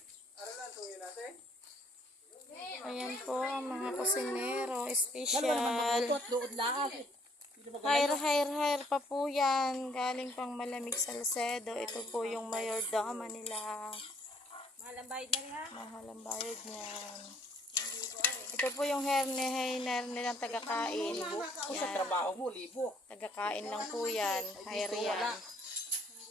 Ayan po, mga kusinero, special. Doon lang. Hire pa po yan. Galing pang Malamig Salcedo. Ito po yung mayordoma nila. Mahal ang bayad na rin ha? Mahal ang bayad niyan. Ito po yung hair nilang tagakain. Kung sa trabaho mo, libo. Tagakain lang po yan. Hire yan.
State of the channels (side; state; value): both; normal; correlation 0.63